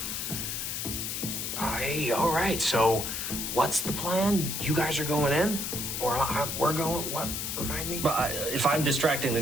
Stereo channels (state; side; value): noise; left; hiss, 3 dB below the sound